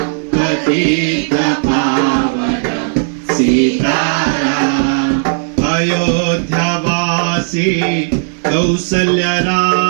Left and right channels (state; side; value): silent; left; digital silence